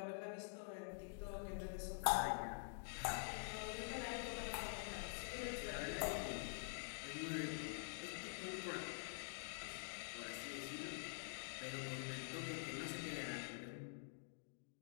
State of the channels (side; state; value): right; silent; digital silence